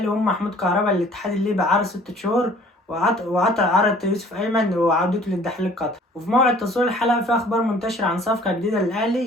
هم محمود كهربا الاتحاد الليبي عرض 6 شهور، وعطى عرض يوسف أيمن وعودته للدحيل القطري. وفي موعد تصوير الحلقة في أخبار منتشرة عن صفقة جديدة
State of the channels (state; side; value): normal; both; correlation 0.53